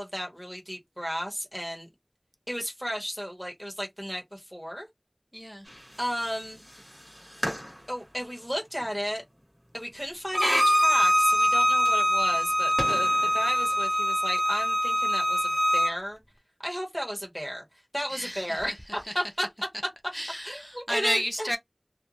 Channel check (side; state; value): both; identical; correlation 1.00